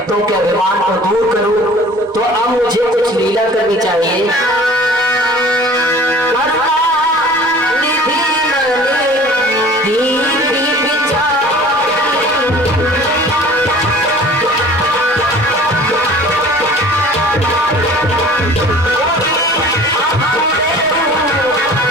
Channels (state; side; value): normal; both; correlation 0.47